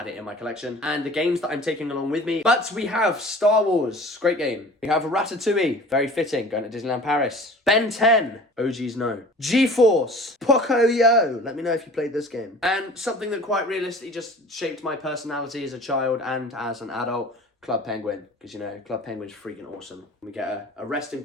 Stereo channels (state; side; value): normal; both; correlation 0.44